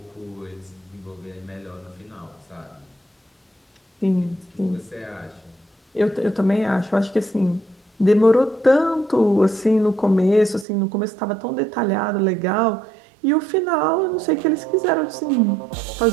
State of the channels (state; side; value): drops out; left; at 10.7 s